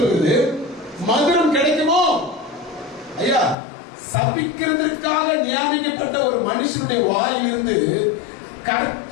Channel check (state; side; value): drops out; right; at 3.6 s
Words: மதுரம் கிடைக்குமோ ஐயா. சபிக்கிறதுக்காக நியமிக்கப்பட்ட ஒரு மனுஷனுடைய வாயிலிருந்து